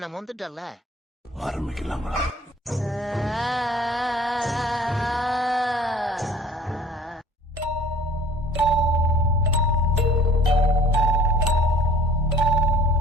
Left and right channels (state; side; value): normal; both; correlation 0.50